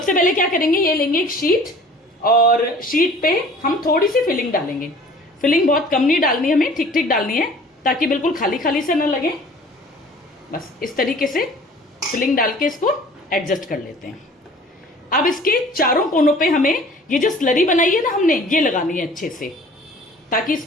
पहले क्या करेंगे, ये लेंगे एक शीट, और शीट पे हम थोड़ी सी फिलिंग डालेंगे। फिलिंग बहुत कम नहीं डालनी, हमें ठीक ठीक डालनी है, ताकि बिल्कुल खाली खाली से न लगे। बस इस तरीके से फिलिंग डाल के इसको एडजस्ट कर लेते हैं। अब इसके चारों कोनों पे हमें ये जो स्लरी बनाई है ना हमने, ये लगानी है अच्छे से, ताकि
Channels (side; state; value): both; normal; correlation 0.48